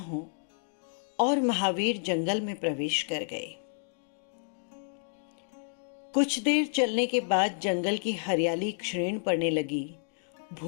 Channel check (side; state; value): right; silent; digital silence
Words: और महावीर जंगल में प्रवेश कर गए। कुछ देर चलने के बाद जंगल की हरियाली क्षीण पड़ने लगी,